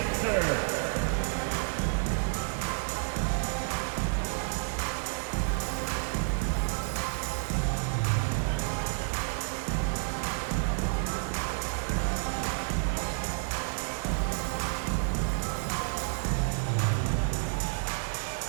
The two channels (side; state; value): left; silent; 58 dB below the other